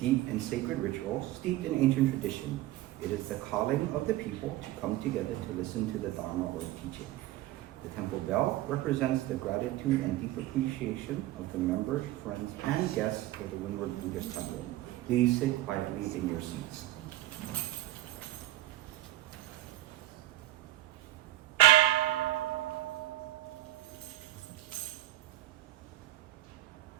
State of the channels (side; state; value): left; quieter; 15.6 dB